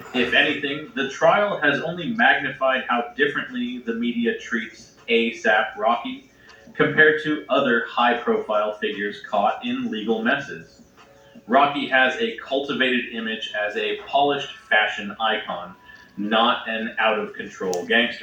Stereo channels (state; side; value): identical; both; correlation 1.00